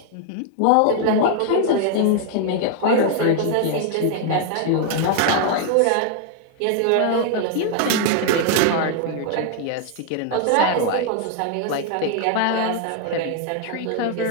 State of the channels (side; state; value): both; different; correlation 0.00